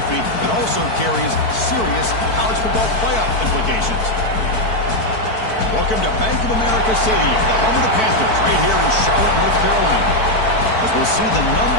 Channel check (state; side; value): late; right; 4.5 ms